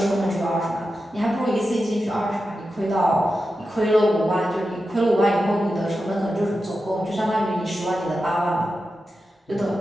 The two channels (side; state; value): both; normal; correlation 0.91